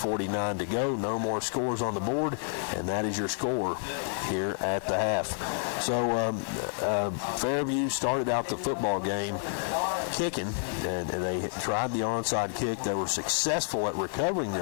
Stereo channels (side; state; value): right; silent; 58 dB below the other